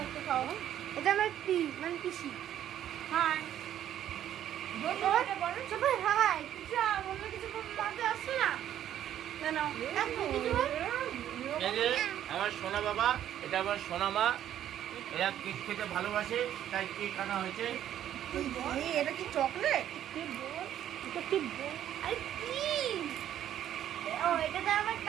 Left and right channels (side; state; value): left; quieter; 11.1 dB